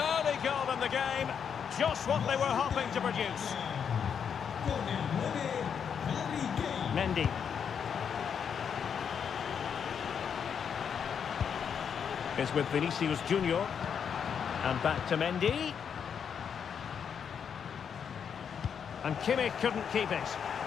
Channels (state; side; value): quieter; right; 7.4 dB